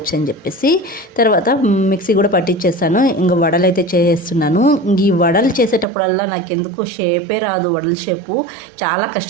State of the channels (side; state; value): left; drops out; at 5.9 s